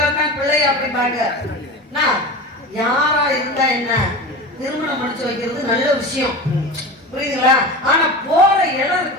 தான் பிள்ளையா அப்படிம்பாங்க. நான் யாரா இருந்தா என்ன, திருமணம் முடிச்சு வைக்கிறது நல்ல விஷயம், புரியுதுங்களா? ஆனா போற இடம்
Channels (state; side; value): normal; both; correlation 0.29